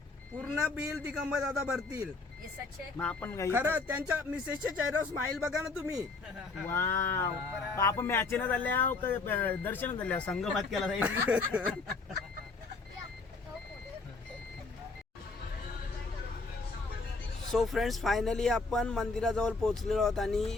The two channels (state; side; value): quieter; right; 4.0 dB